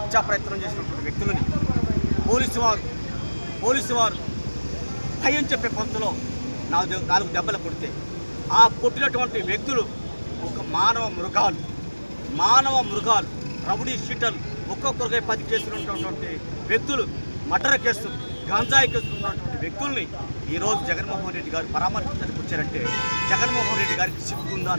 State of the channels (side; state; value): both; inverted; correlation -1.00